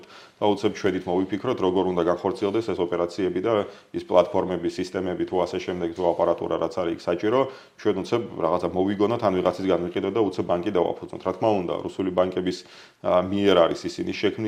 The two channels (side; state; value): both; identical; correlation 1.00